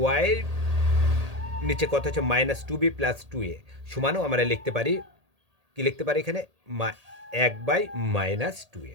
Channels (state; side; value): late; left; 1.8 ms